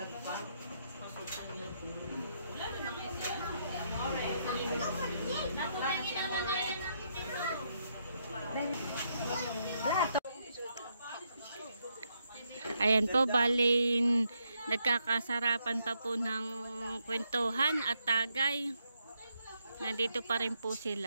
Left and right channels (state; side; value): inverted; both; correlation -0.78